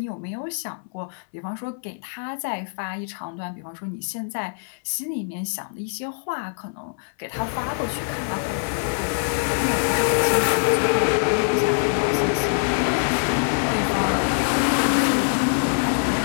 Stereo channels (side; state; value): right; silent; 62 dB below the other